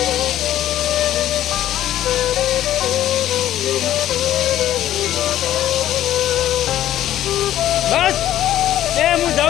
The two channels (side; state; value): right; quieter; 12.6 dB